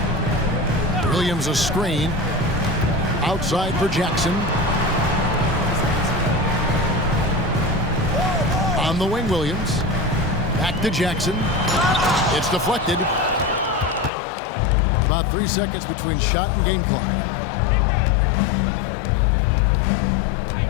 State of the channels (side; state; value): right; drops out; at 14.1 s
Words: Williams a screen. Outside for Jackson. On the wing, Williams. Back to Jackson. It's deflected. About 3 seconds between shot and game clock.